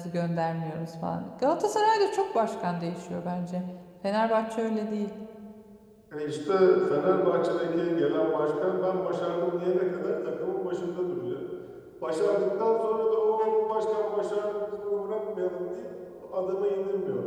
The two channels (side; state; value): both; identical; correlation 1.00